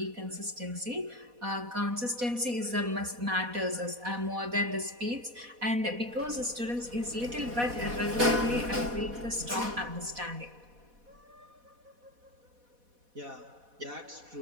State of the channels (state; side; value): late; left; 4.1 ms